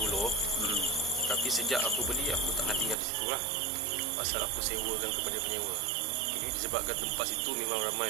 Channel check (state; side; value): drops out; left; at 3.0 s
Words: Tapi sejak aku beli, aku tak nak tinggal di situ lah. Pasal aku sewakan kepada penyewa. Jadi disebabkan tempat situ memang